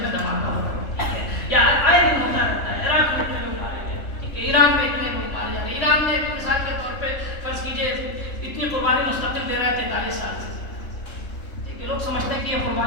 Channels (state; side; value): late; right; 3.4 ms